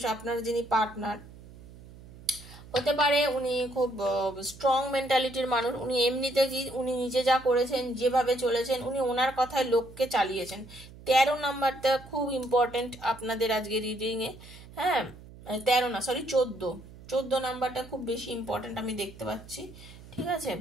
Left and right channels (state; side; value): noise; right; hum, 19 dB below the sound